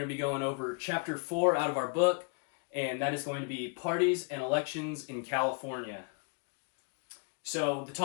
to be going over chapter 4 out of our book, and that is going to be parties and elections in California. So the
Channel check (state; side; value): quieter; right; 36.3 dB